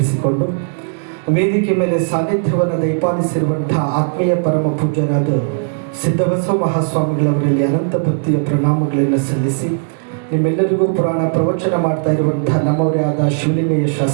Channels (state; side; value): silent; left; digital silence